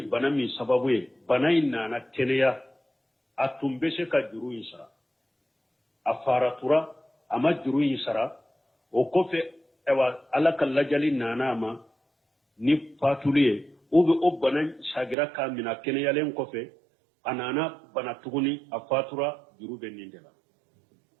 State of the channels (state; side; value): drops out; left; at 15.2 s